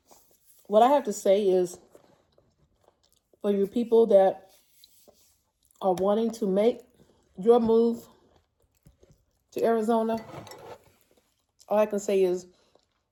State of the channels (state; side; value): identical; both; correlation 1.00